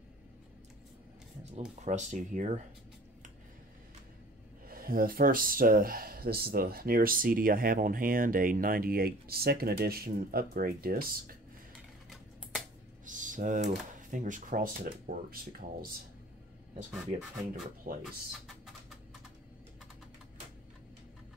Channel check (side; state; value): both; normal; correlation 0.47